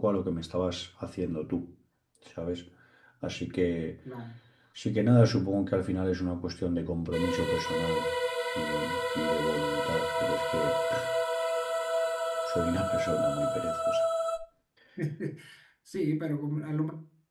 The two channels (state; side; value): identical; both; correlation 1.00